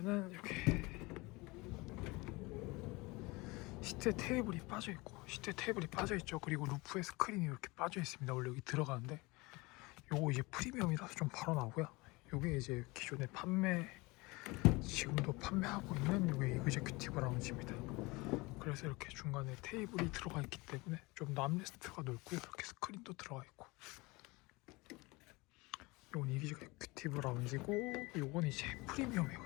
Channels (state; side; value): quieter; right; 24.0 dB